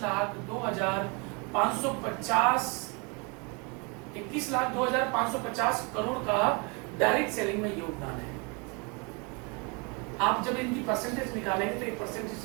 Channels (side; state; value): left; quieter; 31.6 dB